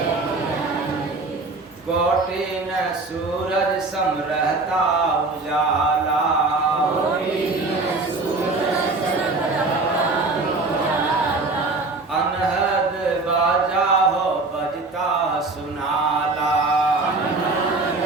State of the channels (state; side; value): quieter; left; 3.4 dB